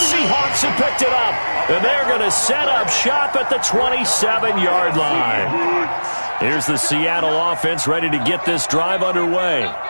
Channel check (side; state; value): both; inverted; correlation -1.00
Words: have picked it up. And they're going to set up shop at the 27-yard line. Here's the Seattle offense ready to get this drive underway.